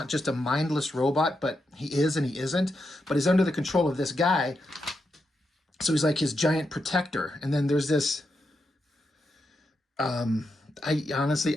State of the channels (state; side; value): normal; both; correlation 0.85